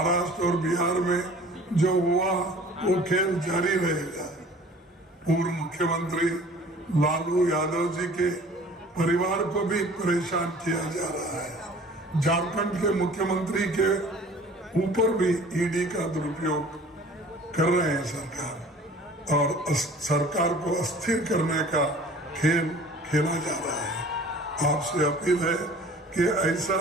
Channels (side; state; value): both; normal; correlation 0.48